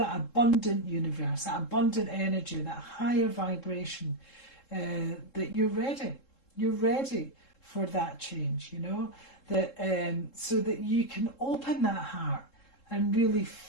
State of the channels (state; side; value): late; right; 3.7 ms